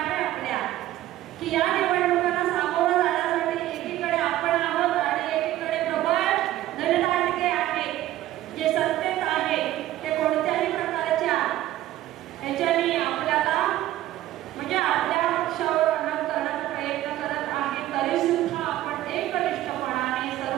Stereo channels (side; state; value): left; quieter; 14.4 dB